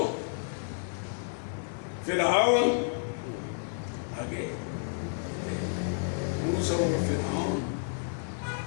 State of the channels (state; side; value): silent; right; 57 dB below the other